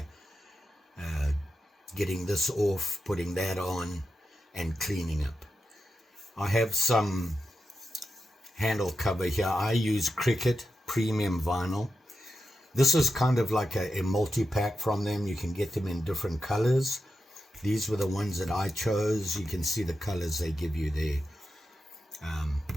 Getting this off, putting that on, and cleaning up. I have some handle cover here. I use Cricut premium vinyl. This is kind of like a multi-pack from them. You can get them in different colors. These were the ones that I chose. You can see the colors they give you there.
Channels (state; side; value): normal; both; correlation 0.89